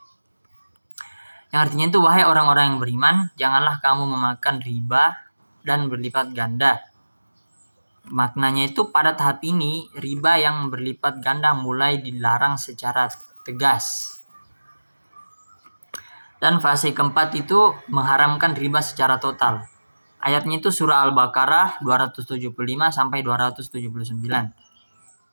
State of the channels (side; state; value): both; inverted; correlation -1.00